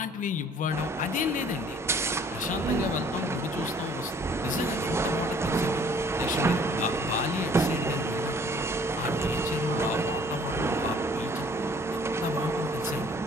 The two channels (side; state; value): both; normal; correlation 0.56